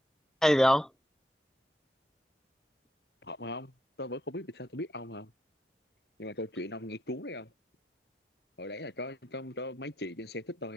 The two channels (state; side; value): normal; both; correlation 0.81